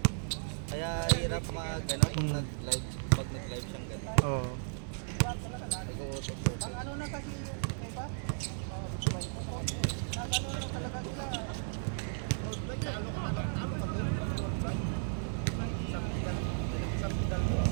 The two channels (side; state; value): left; silent; 55 dB below the other